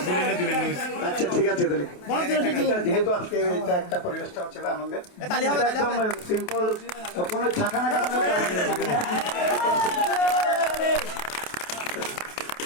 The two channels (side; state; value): right; late; 28 ms